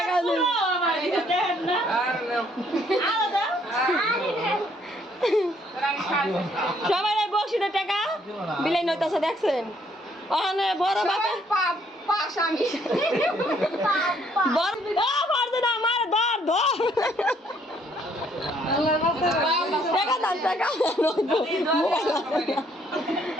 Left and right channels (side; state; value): both; normal; correlation 0.66